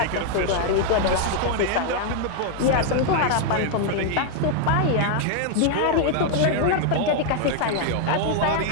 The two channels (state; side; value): different; both; correlation 0.00